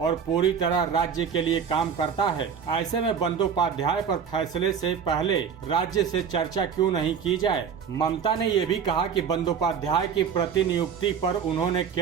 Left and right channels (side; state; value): left; quieter; 7.1 dB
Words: पूरी तरह राज्य के लिए काम करता है। ऐसे में बंदोपाध्याय पर फैसले से पहले राज्य से चर्चा क्यों नहीं की जाए? ममता ने ये भी कहा कि बंदोपाध्याय की प्रतिनियुक्ति पर उन्होंने